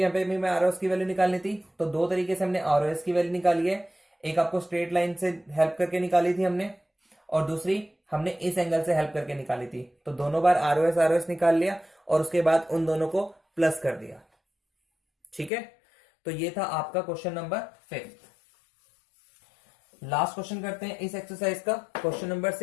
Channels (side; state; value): right; drops out; at 15.5 s